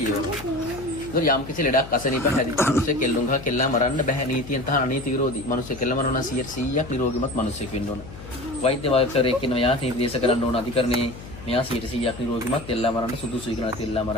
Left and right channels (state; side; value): noise; left; hum, 15 dB below the sound